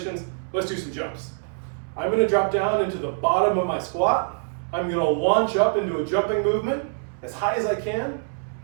Let's do some jumps. I'm going to drop down into the bottom of my squat. I'm going to launch up into a jumping movement as high as I can,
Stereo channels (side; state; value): left; silent; 62 dB below the other